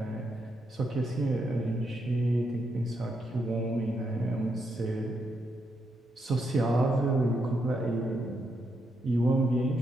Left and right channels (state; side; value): normal; both; correlation 0.80